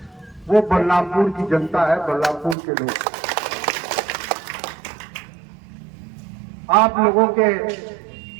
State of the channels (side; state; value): left; drops out; at 2.6 s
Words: वो बलरामपुर की जनता है, बलरामपुर के लोग। आप लोगों के